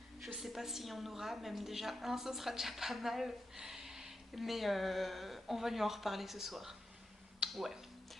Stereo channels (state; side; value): normal; both; correlation 0.88